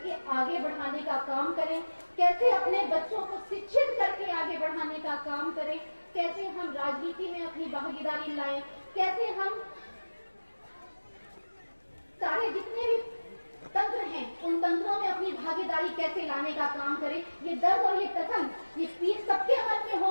आगे बढ़ाने का काम करें, कैसे अपने बच्चों को शिक्षित करके आगे बढ़ाने का काम करें, कैसे हम राजनीति में अपनी भागीदारी लाएं, कैसे हम सारे जितने भी तंत्र हैं उन तंत्रों में अपनी भागीदारी कैसे लाने का काम करें। ये दर्द और ये कथन, ये पीर सबके मन में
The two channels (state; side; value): inverted; both; correlation -1.00